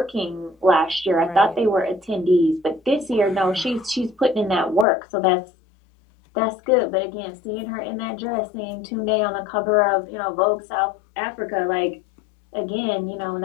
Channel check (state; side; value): drops out; right; at 4.9 s